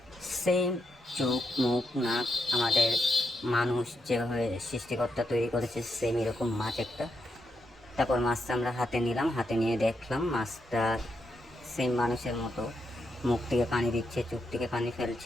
সেম চোখ, মুখ, নাক আমাদের মানুষ যেভাবে সৃষ্টিকর্তা তৈরি করেছে সেম এরকম মাছ একটা। তারপর মাছটা আমরা হাতে নিলাম, হাতে নিয়ে দেখলাম মাছটা সেম মানুষের মতো, মুখ থেকে পানি দিচ্ছে, চোখ থেকে পানি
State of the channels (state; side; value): normal; both; correlation 0.82